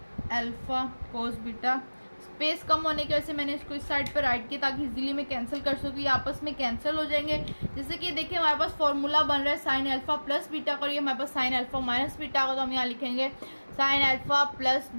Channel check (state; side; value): inverted; both; correlation -1.00